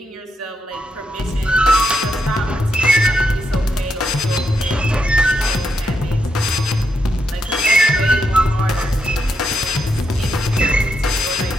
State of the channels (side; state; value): both; normal; correlation 0.81